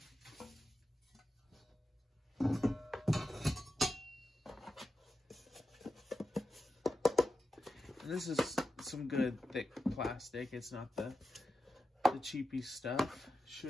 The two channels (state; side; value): normal; both; correlation 0.91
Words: And this is some good thick plastic. It's not the cheapy stuff.